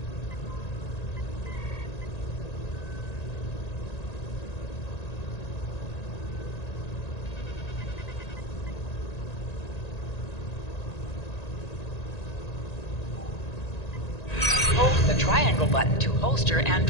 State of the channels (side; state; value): right; late; 1.9 ms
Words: triangle button to holster and